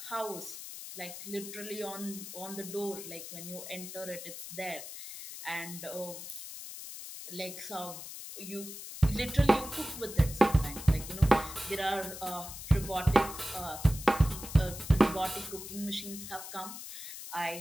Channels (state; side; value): noise; left; hiss, 10 dB below the sound